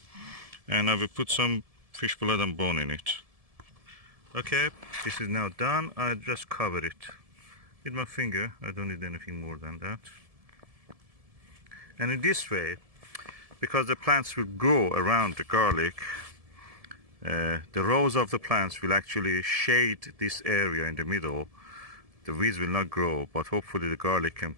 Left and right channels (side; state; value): left; late; 1.7 ms